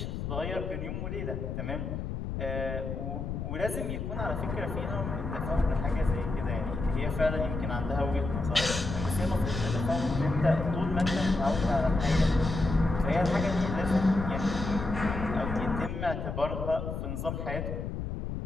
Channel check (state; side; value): noise; left; rumble, 4 dB below the sound